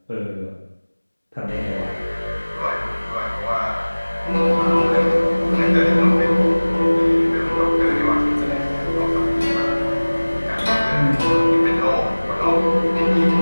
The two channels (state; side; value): inverted; both; correlation -1.00